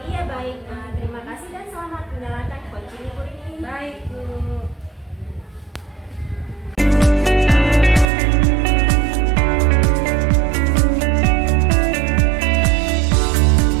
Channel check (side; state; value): left; drops out; at 8.1 s